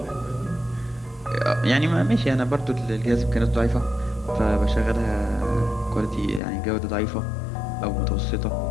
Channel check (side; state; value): right; drops out; at 6.4 s